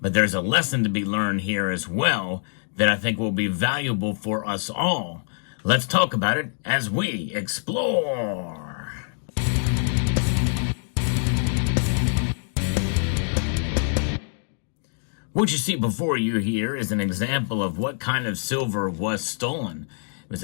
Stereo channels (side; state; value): right; silent; digital silence